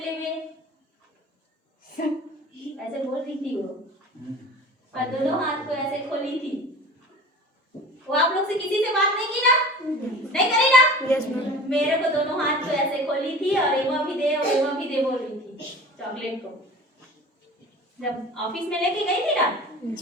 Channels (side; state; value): both; normal; correlation 0.40